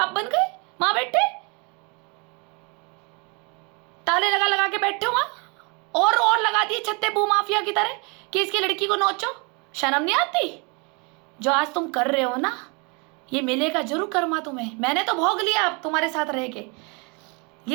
बन गए माँ बेटे, ताले लगा लगा के बैठे हो वहां, और लगा दिए छत्ते भू माफिया की तरह कि इसकी लड़की को नोचो। शर्म नहीं आती? जो आज तुम कर रहे हो ना, ये मिलेगा जरूर कर्मा तुम्हें। मैंने तो भोग लिया अब तुम्हारे साथ रह के,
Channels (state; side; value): quieter; left; 32.0 dB